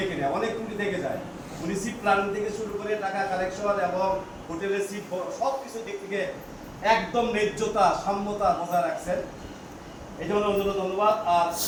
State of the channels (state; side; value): identical; both; correlation 1.00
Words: না, অনেক ট্যুরই দেখে যায়। উনি সিট প্ল্যানিং থেকে শুরু করে টাকা কালেকশন এবং হোটেলের সিট সব কিছু দিক থেকে একদম ন্যায্যতা সাম্যতা বজায় রাখছেন, এই জন্য অন্যান্য ধন্যবাদ। আর